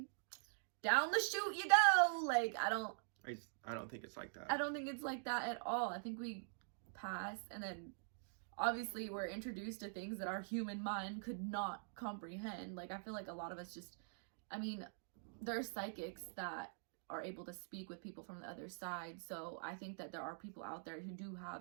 down the chute you go. Like I don't think it's like that. I don't think it's like that at all. I think we pass, and then obviously we're introduced to things that our human mind could not comprehend. Like I feel like a lot of us just, there are psychics that are able to speak with people from the other side. So I think that there are people out there who do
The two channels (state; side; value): silent; left; digital silence